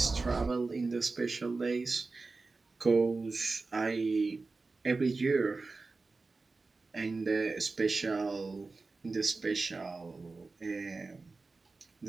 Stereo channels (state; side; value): quieter; left; 3.8 dB